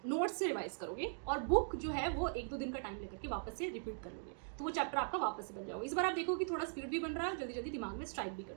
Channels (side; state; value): left; silent; digital silence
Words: नोट्स से रिवाइज करोगे और बुक जो है वो 1-2 दिन का टाइम लेकर के वापस से रिपीट कर लोगे, तो वो चैप्टर आपका वापस से बन जाओगे। इस बार आप देखो कि थोड़ा स्पीड भी बन रहा है, जल्दी जल्दी दिमाग में स्ट्राइक भी कर